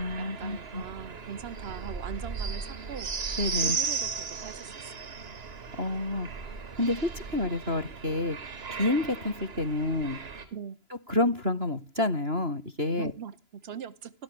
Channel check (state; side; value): late; left; 2.9 ms